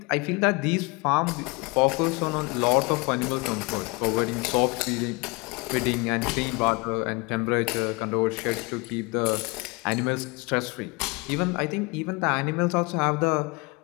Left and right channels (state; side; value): quieter; right; 27.7 dB